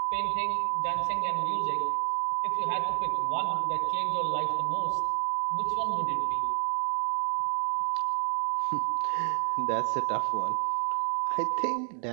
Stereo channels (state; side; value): silent; left; digital silence